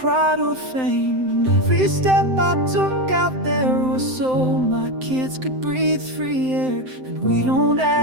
or fame. And every step I took out there was so my kids could breathe free air. And we don't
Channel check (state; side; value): late; left; 7.7 ms